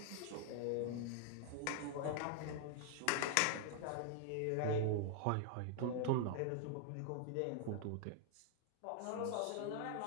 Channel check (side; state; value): both; different; correlation 0.00